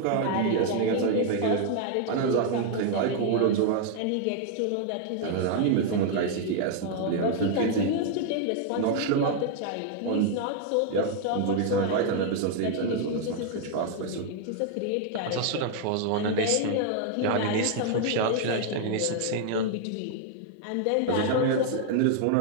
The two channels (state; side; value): different; both; correlation 0.00